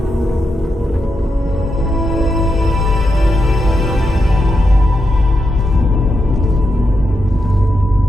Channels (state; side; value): normal; both; correlation 0.85